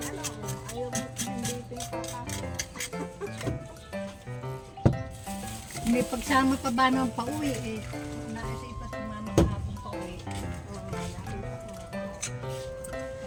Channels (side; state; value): both; identical; correlation 1.00